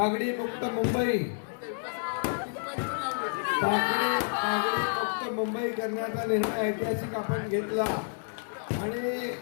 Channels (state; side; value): silent; right; 58 dB below the other